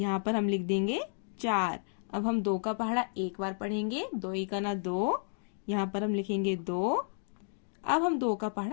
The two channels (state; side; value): silent; right; digital silence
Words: पर हम लिख देंगे 4। अब हम 2 का पहाड़ा 1 बार पढ़ेंगे। 2 इका ना 2, यहाँ पर हम लिखेंगे 2। अब हम 2 का